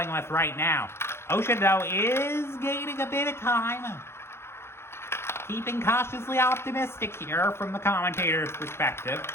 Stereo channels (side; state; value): right; late; 0.12 ms